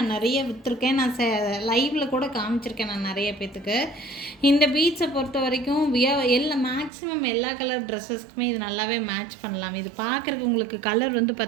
நிறைய விற்றுருக்கேன். நான் லைவில் கூட காமிச்சிருக்கேன் நான் நிறைய பேத்துக்கு. இந்த பீட்ஸை பொறுத்த வரைக்கும் மேக்ஸிமம் எல்லா கலர் ட்ரெஸ்ஸஸ்க்குமே இது நல்லாவே மேட்ச் பண்ணலாம். இது பார்க்குறதுக்கு உங்களுக்கு கலர் வந்து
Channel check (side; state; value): left; drops out; at 6.9 s